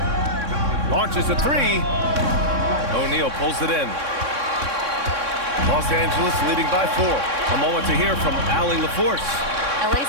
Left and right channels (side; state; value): left; late; 3.6 ms